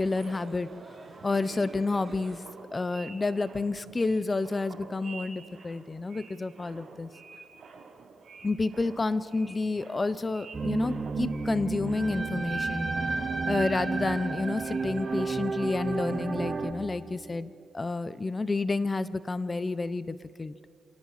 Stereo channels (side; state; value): both; normal; correlation 0.93